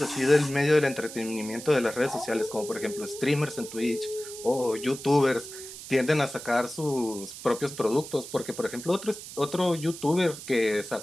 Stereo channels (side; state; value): right; noise; hiss, 12 dB below the sound